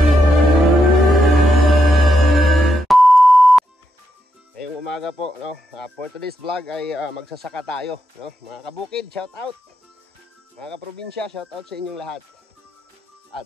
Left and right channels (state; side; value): normal; both; correlation 0.83